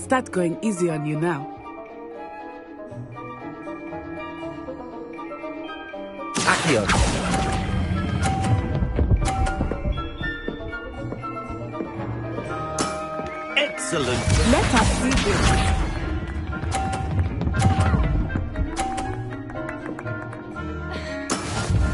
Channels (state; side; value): identical; both; correlation 1.00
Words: going easy on you now. Accio! Excellent. Let us see this.